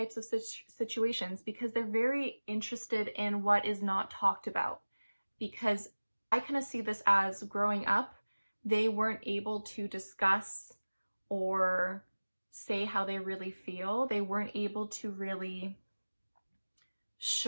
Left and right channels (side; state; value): both; inverted; correlation -1.00